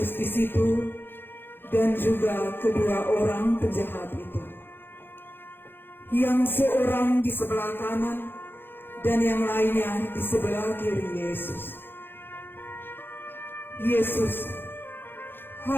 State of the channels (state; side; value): late; right; 0.10 ms